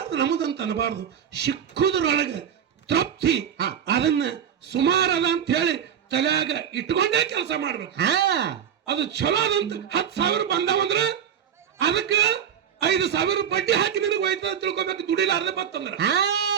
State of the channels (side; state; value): left; quieter; 8.7 dB